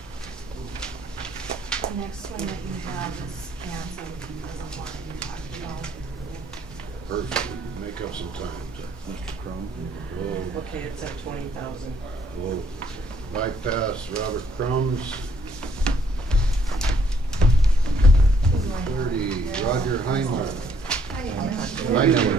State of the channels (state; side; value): normal; both; correlation 0.67